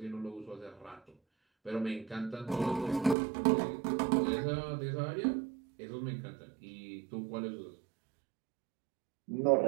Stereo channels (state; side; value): drops out; left; at 3.2 s